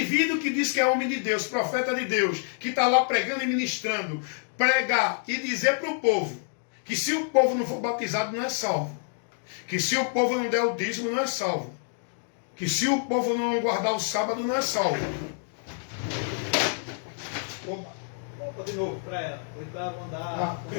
que diz que é homem de Deus, profeta de Deus, que está lá pregando e ministrando, pregar e dizer para o povo que se o povo não for batizado não é salvo, que se o povo não der o dízimo não é salvo, que se o povo não guardar o sábado não é salvo. Opa, volta de novo para ela. Oitava andar.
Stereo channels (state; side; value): silent; right; 57 dB below the other